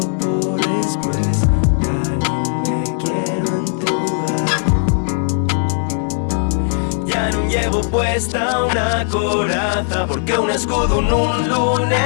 por después, ya no me quiero entubar. Ya no llevo puesta una coraza, porque un escudo un lo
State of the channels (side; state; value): right; silent; 67 dB below the other